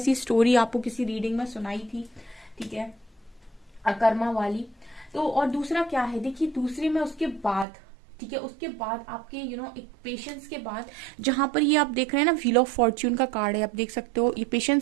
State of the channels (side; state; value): left; drops out; at 7.7 s